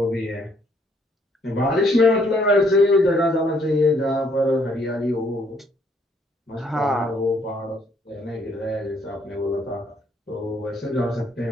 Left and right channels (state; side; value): normal; both; correlation 0.67